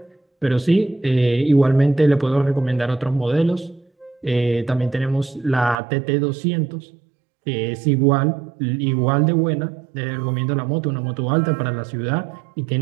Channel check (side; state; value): left; drops out; at 5.8 s